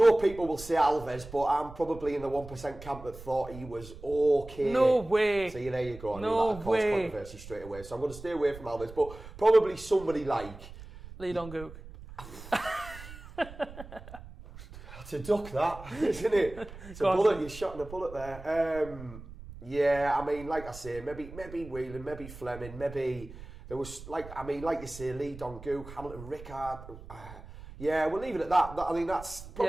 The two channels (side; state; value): right; noise; rumble, 15 dB below the sound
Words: people will say Alves, but I'm probably in the 1% camp that thought he was okay. No way. See, there you go. I knew that would cause controversy straight away. So I'm going to stay away from Alves, but probably somebody like Lee Dong-gook. To duck that, isn't it? It's a bullet. You're shotting a bullet there. Like I say, maybe Whelan, maybe Fleming, maybe there was like you say, Lee Dong-gook, Hamilton Rickard. We'll leave it at that. I think that's